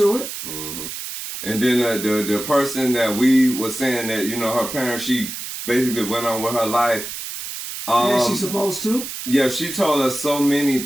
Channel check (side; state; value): right; noise; hiss, 8 dB below the sound